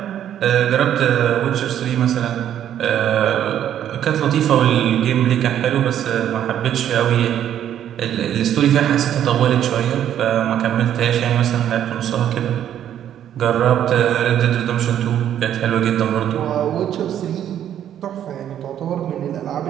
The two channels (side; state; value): left; quieter; 10.4 dB